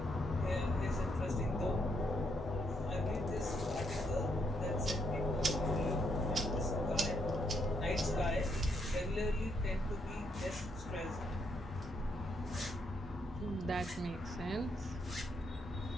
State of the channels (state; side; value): normal; both; correlation 0.75